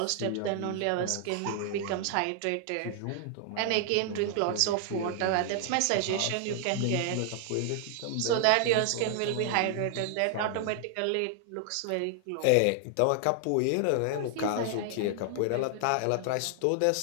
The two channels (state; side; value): different; both; correlation 0.00